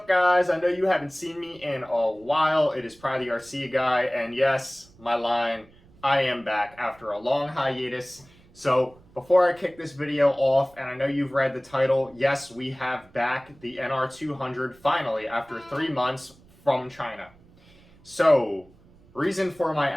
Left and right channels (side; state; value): right; noise; rumble, 27 dB below the sound